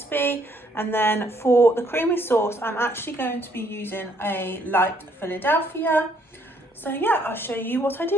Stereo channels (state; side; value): normal; both; correlation 0.68